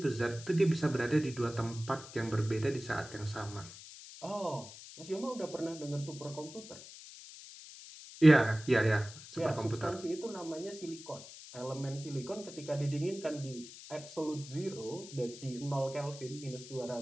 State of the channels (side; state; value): left; noise; hiss, 15 dB below the sound